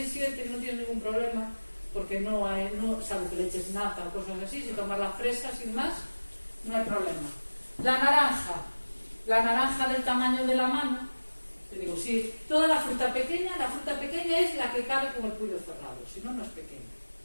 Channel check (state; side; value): inverted; both; correlation -1.00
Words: 7, no tienes ningún problema, porque no hay, salvo que le eches nata o cosas así, si tomas la fresa sin más, no hay problema. La naranja del tamaño de la mano, Te digo, si toda la fruta pequeña es la que cabe con el puño cerrado, si no, no es pequeña.